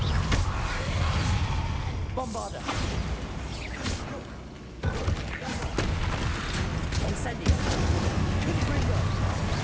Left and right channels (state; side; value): identical; both; correlation 1.00